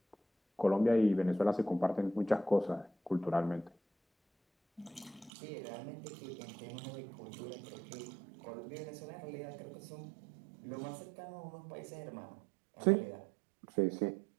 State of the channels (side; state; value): left; drops out; at 5.3 s